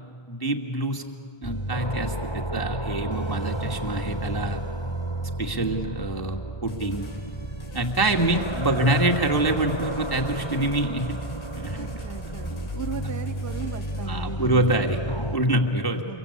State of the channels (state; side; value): late; right; 1.0 ms